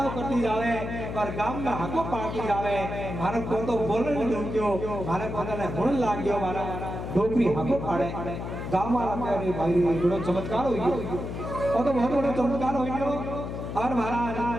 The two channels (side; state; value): left; noise; hum, 6 dB below the sound